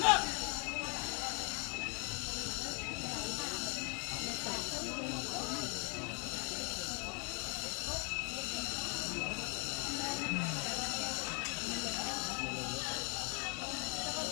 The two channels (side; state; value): right; quieter; 37.7 dB